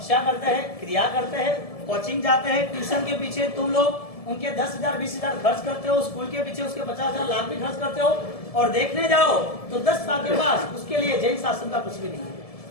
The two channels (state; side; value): late; right; 1.7 ms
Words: करते हैं, क्रिया करते हैं, कोचिंग जाते हैं, ट्यूशन के पीछे तुम लोग उनके 10,000 20,000 खर्च करते हो, स्कूल के पीछे उसके 50,000 लाख भी खर्च करते हो, और देखने जाओ तो 10 साल के बाद उसके लिए जैन शासन का कुछ भी नहीं है।